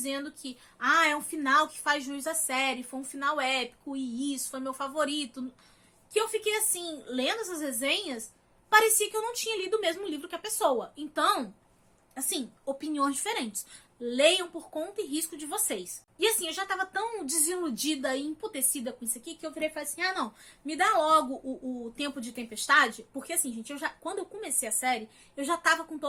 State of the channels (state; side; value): identical; both; correlation 1.00